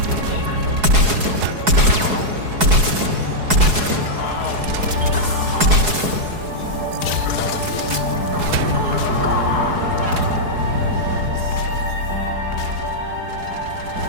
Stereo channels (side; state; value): left; late; 4.7 ms